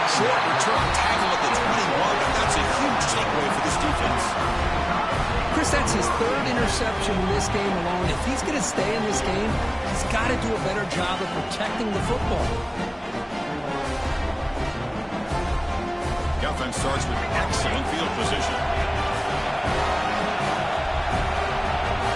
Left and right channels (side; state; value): both; identical; correlation 1.00